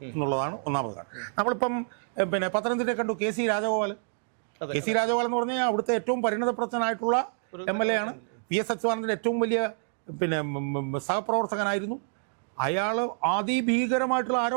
എന്നുള്ളതാണ് ഒന്നാമത് കാര്യം. നമ്മളിപ്പം പത്തനംതിട്ട കണ്ടു KC രാജഗോപാൽ. KC രാജഗോപാൽ എന്ന് പറഞ്ഞാൽ അവിടുത്തെ ഏറ്റവും പരിണതപ്രജ്ഞനായിട്ടുള്ള MLA ആണ്. PS അച്യുതാനന്ദൻ്റെ ഏറ്റവും വലിയ സഹപ്രവർത്തകനായിരുന്നു. അയാൾ അതിഭീകരമായിട്ടുള്ള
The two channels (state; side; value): silent; left; 59 dB below the other